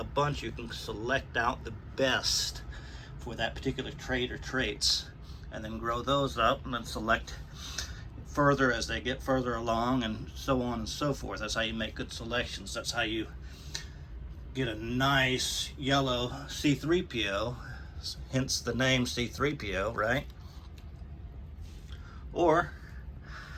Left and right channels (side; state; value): both; identical; correlation 1.00